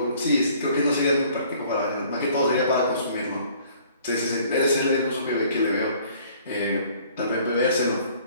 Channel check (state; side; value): inverted; both; correlation -0.56